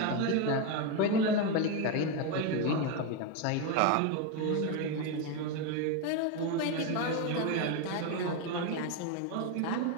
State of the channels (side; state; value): both; different; correlation 0.03